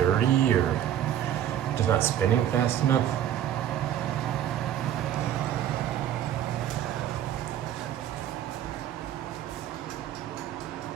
or just not spinning fast enough.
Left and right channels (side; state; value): left; quieter; 10.9 dB